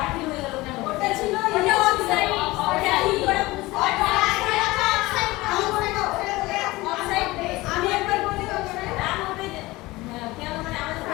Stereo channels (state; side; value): quieter; right; 20.2 dB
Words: হয়ে গেল কেন? ওটা ছিল ওটা অফসাইড, ওটা কি করে বুঝতে অফসাইড। আমি একবার বলি ওকে